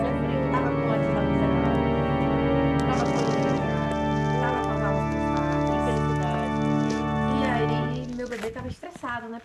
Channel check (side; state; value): both; identical; correlation 1.00